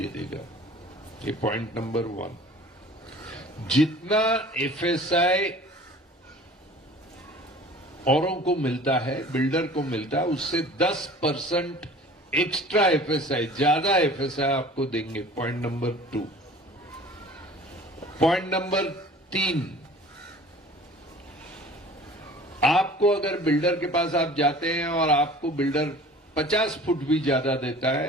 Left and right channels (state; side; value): normal; both; correlation 0.45